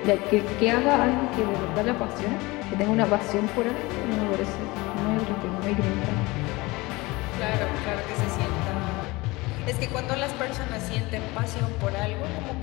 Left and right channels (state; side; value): quieter; right; 22.4 dB